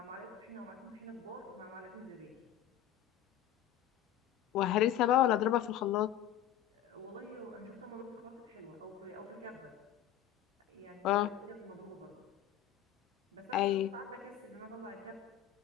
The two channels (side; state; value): right; quieter; 11.2 dB